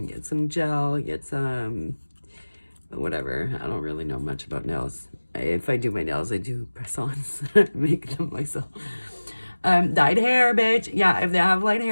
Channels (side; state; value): both; inverted; correlation -1.00